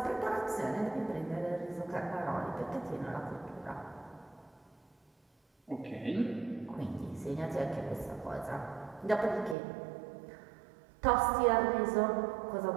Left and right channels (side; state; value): left; drops out; at 9.6 s